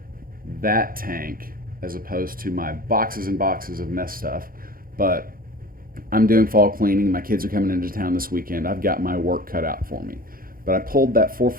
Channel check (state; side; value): late; left; 0.42 ms